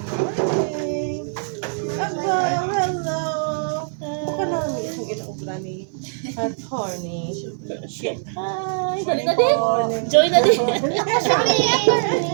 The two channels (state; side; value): silent; left; 56 dB below the other